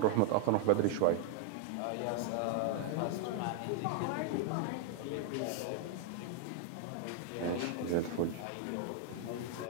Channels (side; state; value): both; different; correlation 0.00